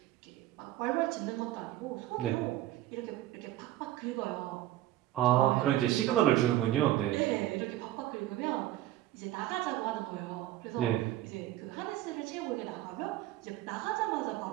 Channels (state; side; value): quieter; left; 14.5 dB